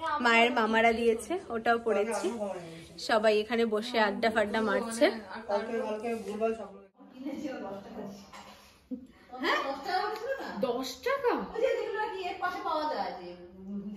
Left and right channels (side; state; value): both; identical; correlation 1.00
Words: মায়ের মামারা দিয়েছে, ওটাও পরেছি। সবাই এখানে বসে আড্ডা ফাড্ডা মারছে। কালকে ভুলভাল সব 10 টাকা